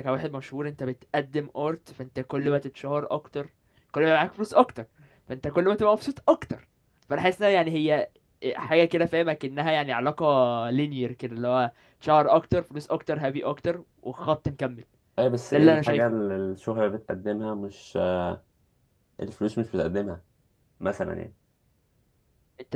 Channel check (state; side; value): identical; both; correlation 1.00